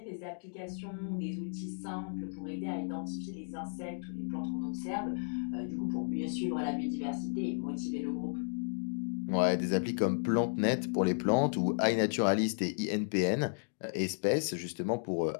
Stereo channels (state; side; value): silent; right; digital silence